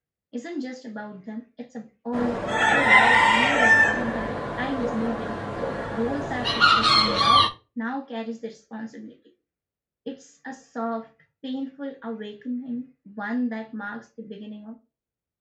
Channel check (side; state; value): both; identical; correlation 1.00